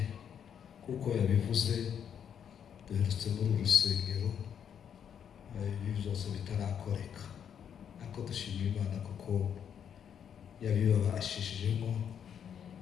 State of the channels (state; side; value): quieter; right; 8.3 dB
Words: kuko yabivuze duherutse muri urusengero ibi byose bitarakoreka, ariko dushimira Imana kuko yabibabashishijemo.